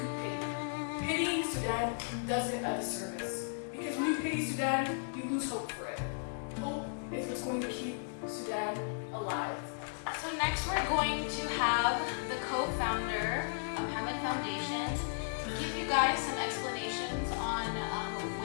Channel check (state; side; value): silent; right; 54 dB below the other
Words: pity. Pitying Sudan does it a disservice. Because when you pity Sudan, you lose hope for it. Hope is what's going to keep Sudan alive. So next we're going to have the co-founder of Hamid Foundation give you guys some explanations on